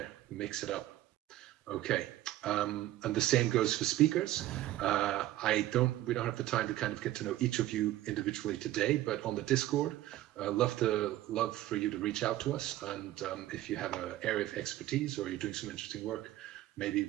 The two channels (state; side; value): quieter; left; 14.8 dB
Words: mix it up. Okay, and the same goes for speakers. We don't have the time to kind of get to know each of you individually today, but on the Discord, love for you to reach out to us. And if you have an area of expertise or you're doing some interesting work, maybe